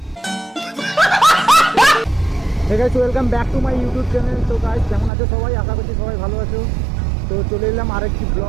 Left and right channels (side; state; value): left; drops out; at 5.1 s